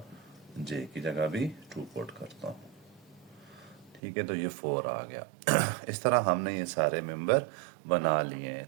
जे की जगह भी 2 पुट करता हूँ। ठीक है, तो ये 4 आ गया। इस तरह हमने ये सारे मेंबर बना लिए हैं।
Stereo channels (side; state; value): left; drops out; at 4.0 s